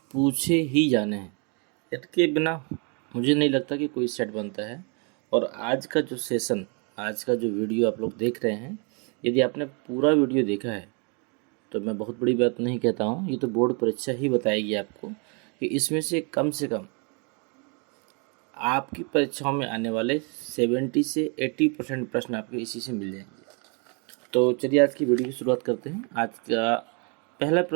पूछे ही जाने हैं। इनके बिना मुझे नहीं लगता कि कोई सेट बनता है। और आज का जो सेशन, आज का जो वीडियो आप लोग देख रहे हैं, यदि आपने पूरा वीडियो देखा है तो मैं बहुत बड़ी बात नहीं कहता हूँ, ये तो बोर्ड परीक्षा ही बताएगी आपको कि इसमें से कम आपकी परीक्षाओं में आने वाले 70 से 80% प्रश्न आपके इसी से मिल जाएंगे। तो चलिए आज की वीडियो की शुरुआत करते हैं। आज का पहला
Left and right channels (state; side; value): quieter; left; 35.2 dB